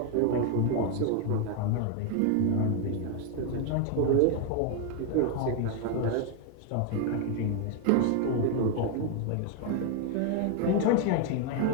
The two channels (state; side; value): different; both; correlation 0.01